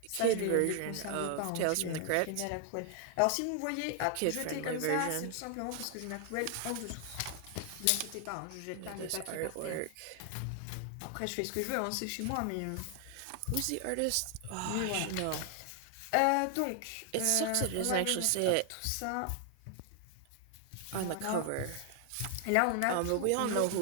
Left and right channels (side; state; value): both; different; correlation 0.00